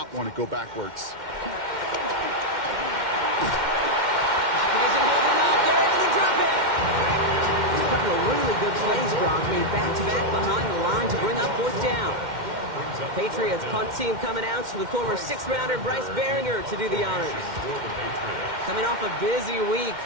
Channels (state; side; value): late; left; 2.1 ms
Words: want to go backwards. Really good plays, Brock, made back-to-back behind the line to bring up 4th down. Patriots punt team coming out to the former 6th-rounder Bryce Behringer to do the honors. Coming off a busy week,